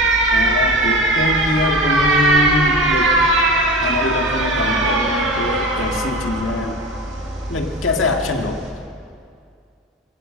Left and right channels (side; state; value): both; normal; correlation 0.31